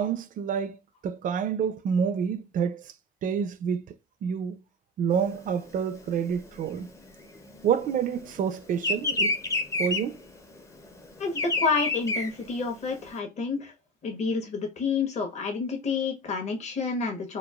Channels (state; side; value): normal; both; correlation 0.24